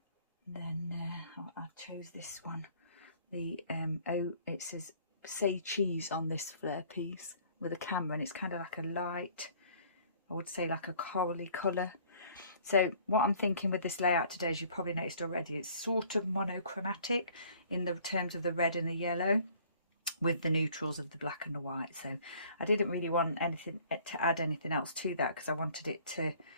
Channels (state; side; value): inverted; both; correlation -0.56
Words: Then I chose this one, the it says say cheese on this Flair piece with a camera, and it's kind of like a light, I would say like a corally colour. So what I'm thinking with this layout today, as you probably noticed already, it's sort of monochromatic in the terms of the red and the yellow, with the neutrals of the black and the white. So I didn't really want anything to add anything else to that, because I wanted it to,